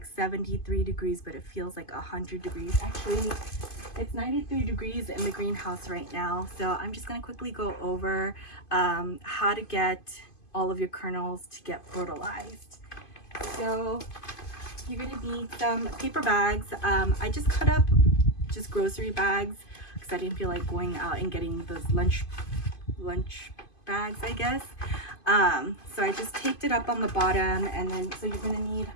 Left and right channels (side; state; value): right; late; 2.5 ms